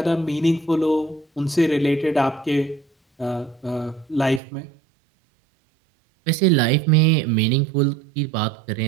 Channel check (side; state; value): left; drops out; at 4.4 s